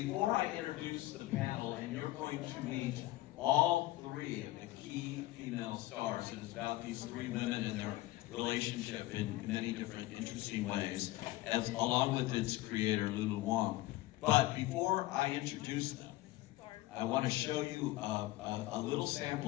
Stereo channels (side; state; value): right; quieter; 17.9 dB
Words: I introduce the panel, and you're going to meet all three of the key female stars, it is about these three women and their relationship in many different interesting ways, along with its creator, Lulu Wong. But before I introduce them, I want to show you a little